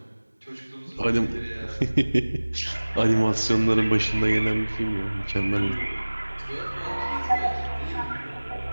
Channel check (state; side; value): inverted; both; correlation -1.00